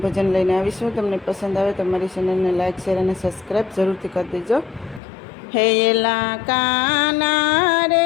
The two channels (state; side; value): drops out; right; at 5.0 s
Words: ભજન લઈને આવીશું. તમને પસંદ આવે તો મારી ચેનલને લાઇક, શેર અને સબસ્ક્રાઈબ જરૂરથી કરી દેજો. હે એલા કાના